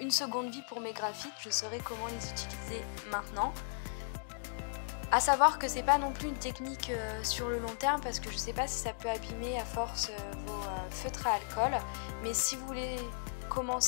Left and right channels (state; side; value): silent; right; digital silence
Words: seconde vie pour mes graphites, je saurai comment les utiliser maintenant. A savoir que c'est pas non plus une technique sur le long terme, parce que je sais pas si ça peut abîmer à force vos feutres à alcool, mais si vous voulez